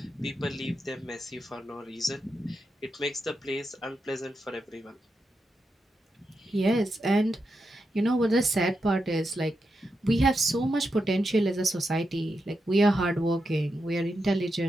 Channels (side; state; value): both; normal; correlation 0.86